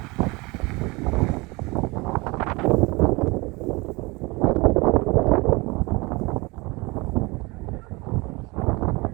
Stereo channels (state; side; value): quieter; left; 25.0 dB